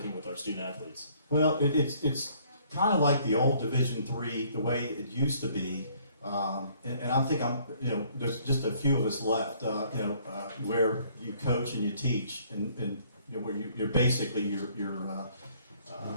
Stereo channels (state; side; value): inverted; both; correlation -0.61